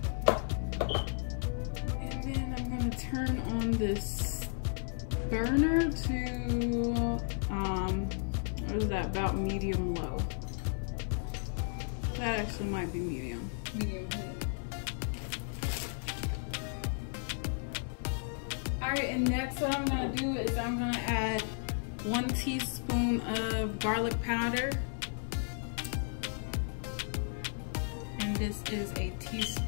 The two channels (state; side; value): silent; right; 55 dB below the other